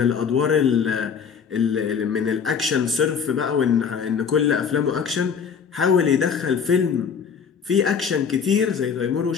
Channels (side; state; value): right; quieter; 6.7 dB